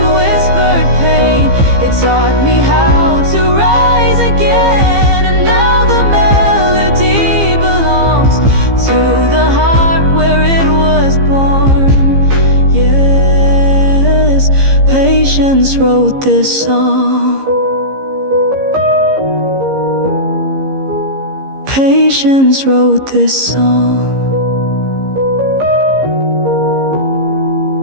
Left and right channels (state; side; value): late; left; 15 ms